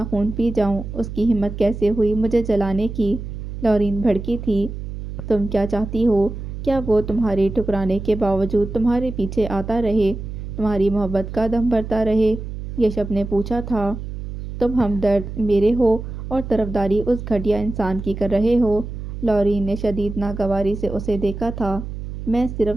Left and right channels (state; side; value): noise; right; hum, 8 dB below the sound